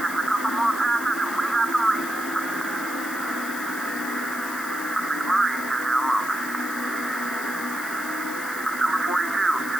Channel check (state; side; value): noise; left; hiss, 11 dB below the sound